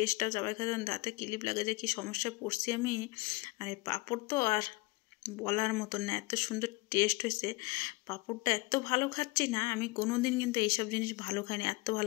চাবাই খাওয়া, দাঁতে ক্লিপ লাগে, যে কী সমস্যায় পড়ছি আমি। আর এই পাঁপড় তো আর বলার মতন না, এত সুন্দর টেস্ট হয়েছে। পাঁপড়টা এত ভালো খাচ্ছি না আমি কোনো দিন, কিন্তু এইসব জিনিস ভালো খাইনি, এত ভালো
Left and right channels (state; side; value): quieter; right; 23.7 dB